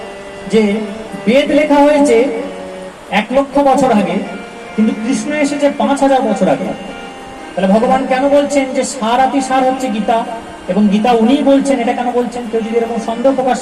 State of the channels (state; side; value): identical; both; correlation 1.00